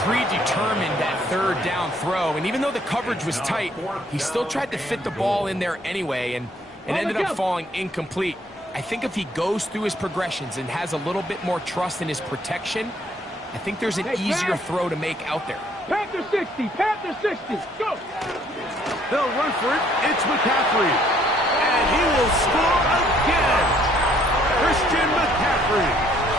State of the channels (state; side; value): normal; both; correlation 0.64